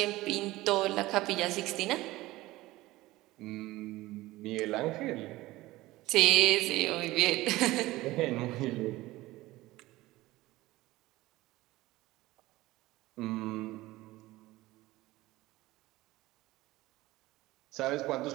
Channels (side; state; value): left; quieter; 18.3 dB